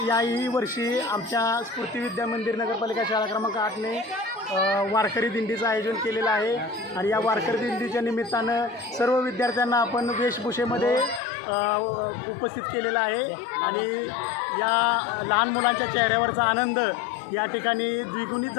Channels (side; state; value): right; drops out; at 11.2 s